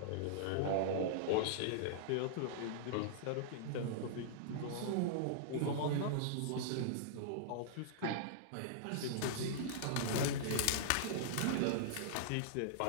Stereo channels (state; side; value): different; both; correlation -0.02